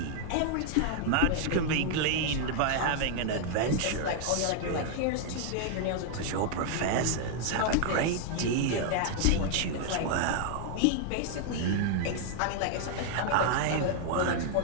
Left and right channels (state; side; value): different; both; correlation 0.00